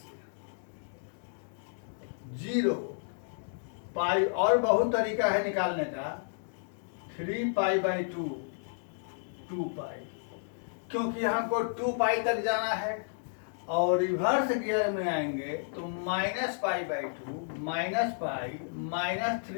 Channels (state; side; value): silent; right; digital silence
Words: 0 पाई, और बहुत तरीका है निकालने का। 3 पाई बाई 2 2 पाई, क्योंकि हमको 2 पाई तक जाना है, और रिवर्स गियर में आएंगे तो -pi by 2 minus pi